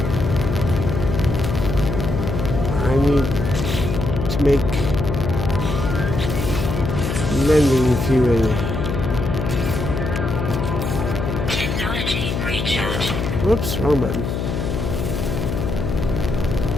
I need to make landing fuel. Technology recharge. Whoops, wrong button.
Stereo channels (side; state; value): left; noise; hum, 2 dB below the sound